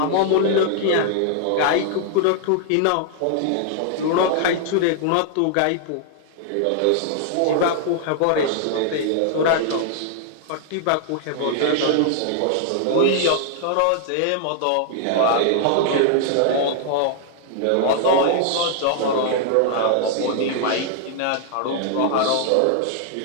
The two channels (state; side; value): different; both; correlation 0.00